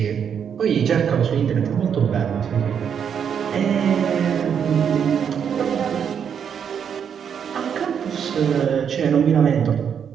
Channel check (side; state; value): left; quieter; 7.7 dB